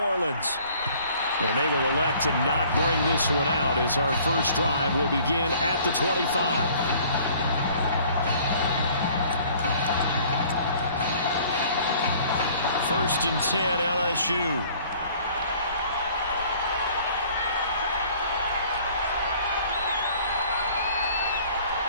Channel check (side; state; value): both; inverted; correlation -0.54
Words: And they will elect to not bring this one out as our first drive will begin at the 25. First and 10, LSU.